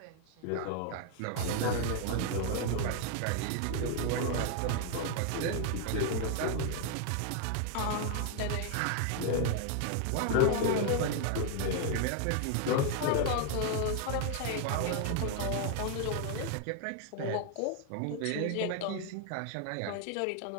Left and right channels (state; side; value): different; both; correlation 0.00